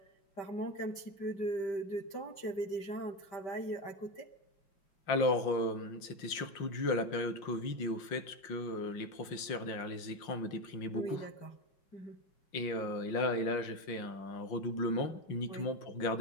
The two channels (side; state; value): right; late; 5.7 ms